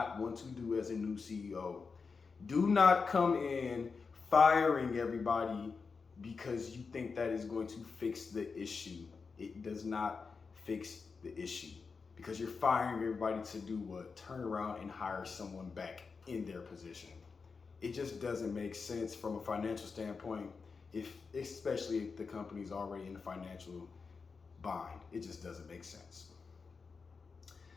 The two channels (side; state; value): right; quieter; 5.0 dB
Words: want to do as a new CEO. Do not come in firing everybody because you think that is going to fix the issue. It does not fix the issue because you're firing everybody to do what? Turn around and hire someone back in their position. It just doesn't make sense from a financial standpoint, especially if the company's already in the financial bind. It just doesn't make sense.